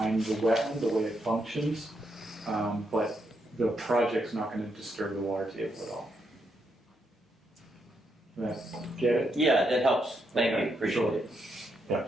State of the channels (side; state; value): both; normal; correlation 0.79